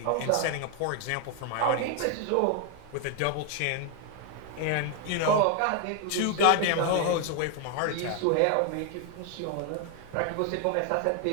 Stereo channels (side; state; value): both; different; correlation 0.01